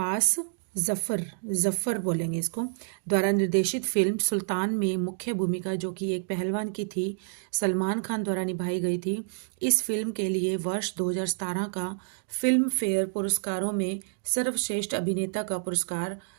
जफर बोलेंगे इसको, द्वारा निर्देशित फिल्म सुल्तान में मुख्य भूमिका जो कि एक पहलवान की थी सलमान खान द्वारा निभाई गई थी। इस फिल्म के लिए वर्ष 2017 का फिल्म फेयर पुरस्कारों में सर्वश्रेष्ठ अभिनेता का पुरस्कार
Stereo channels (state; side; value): silent; left; digital silence